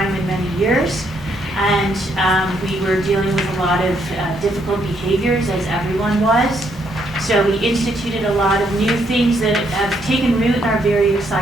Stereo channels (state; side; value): normal; both; correlation 0.73